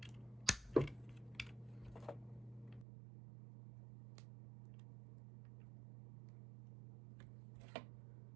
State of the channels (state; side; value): drops out; left; at 2.9 s